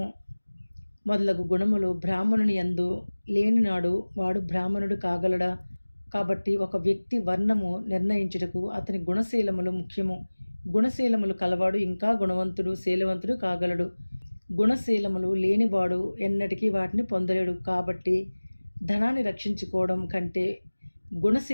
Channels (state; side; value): inverted; both; correlation -1.00